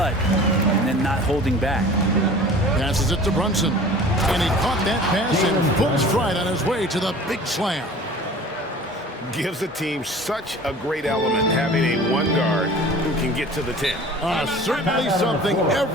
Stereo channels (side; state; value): both; normal; correlation 0.43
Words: and then not holding back. Passes it to Brunson. And he caught that pass in full stride on his way to the big slam. Gives the team such a great element having a one guard who can get to the 10. Certainly something